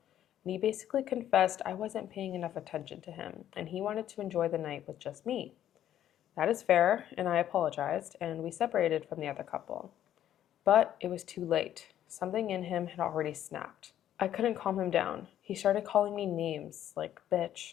And he basically confessed I wasn't paying enough attention to him, and he wanted to enjoy the night with just me. That is fair, and I apologized, and we separated from the other couple. But it was too late. Something in him had already snapped. I couldn't calm him down. He started calling me names like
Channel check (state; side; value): quieter; right; 11.3 dB